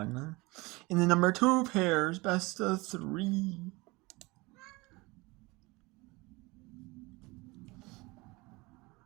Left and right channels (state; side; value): quieter; left; 23.8 dB